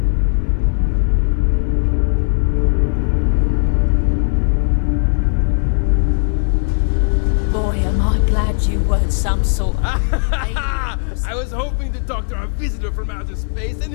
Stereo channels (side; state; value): right; silent; digital silence